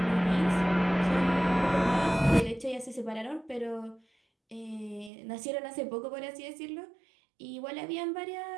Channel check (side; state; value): left; drops out; at 5.1 s